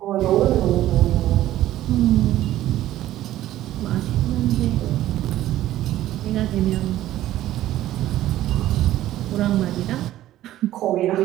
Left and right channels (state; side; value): quieter; left; 13.9 dB